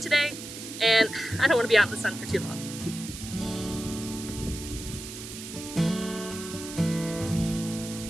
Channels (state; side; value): noise; right; hiss, 11 dB below the sound